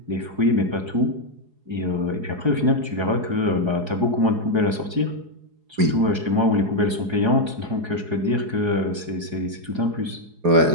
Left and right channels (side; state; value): left; late; 4.8 ms